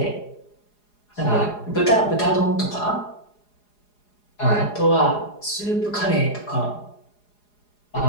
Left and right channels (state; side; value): late; right; 4.8 ms